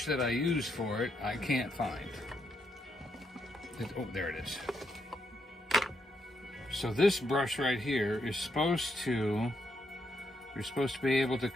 that I use for it I can't find. Oh, there it is. So this brush right here is supposed to, you're supposed to be able to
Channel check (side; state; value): both; normal; correlation 0.78